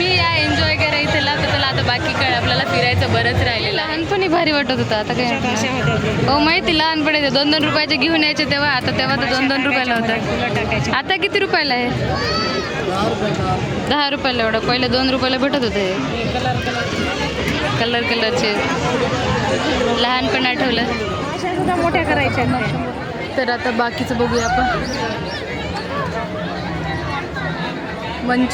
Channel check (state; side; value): identical; both; correlation 1.00